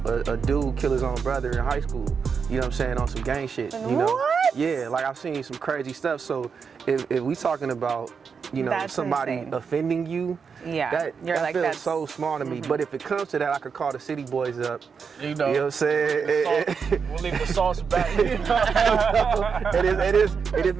a dude kill his own brother in high school. You know what I'm saying? On some gang shit. You know? What? Yeah, like I've seen some crazy stuff. So if we talking about, you know, That's somebody insane. offending you, Yeah, that you're like, feels that's so small to me. But if it comes to that, I could call the City Boys up. You know what I'm saying? we'll leave the sauce back. It is.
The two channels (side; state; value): left; quieter; 5.9 dB